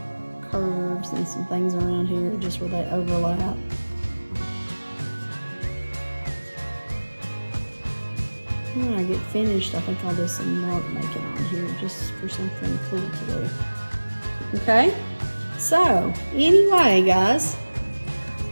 curves and some things around here just where they overlap. When I get finished, I think I'll do some mark making on here just for something cool to do. Okay? So, anyway, guys,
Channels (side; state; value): both; inverted; correlation -1.00